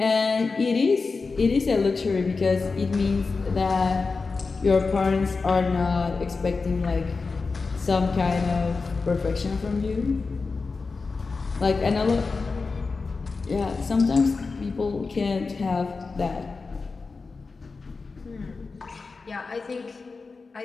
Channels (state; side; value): quieter; right; 4.3 dB